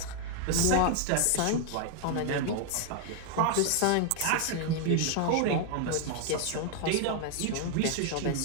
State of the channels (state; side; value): different; both; correlation 0.00